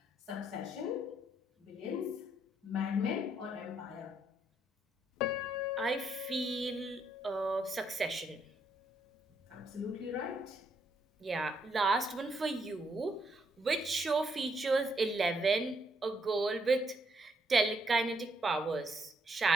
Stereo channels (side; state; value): both; normal; correlation 0.74